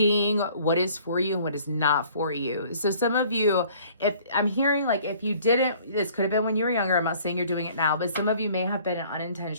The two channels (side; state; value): both; inverted; correlation -0.55